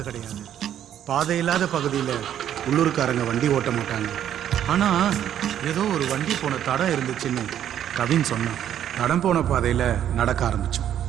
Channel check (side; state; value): left; quieter; 10.4 dB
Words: கிடையாது. பாதை இல்லாத பகுதியில் உள்ளூர்காரங்க வண்டி ஓட்ட மாட்டாங்க. ஆனால் ஏதோ ஒரு வண்டி போன தடம் இருந்துச்சுன்னு கவின் சொன்னான். தடம் போன பாதையில் நடக்க ஆரம்பித்தோம்.